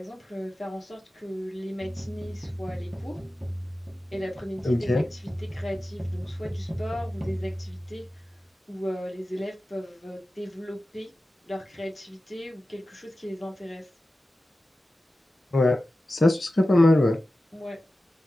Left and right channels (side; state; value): both; normal; correlation 0.94